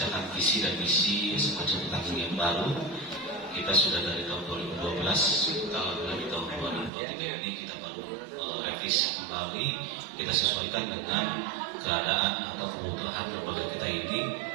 visi dan misi semacam tahun yang baru. Kita sudah dari tahun 2012, dari tahun 2023 ini kita baru revisi kembali, kita sesuaikan dengan keadaan atau kebutuhan lembaga kita ini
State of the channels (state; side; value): drops out; left; at 6.9 s